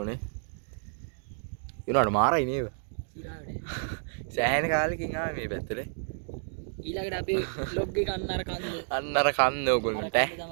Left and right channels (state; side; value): silent; left; digital silence